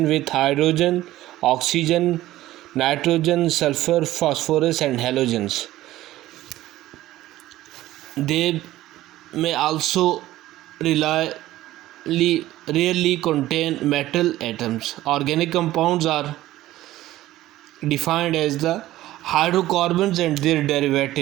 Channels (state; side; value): quieter; left; 15.4 dB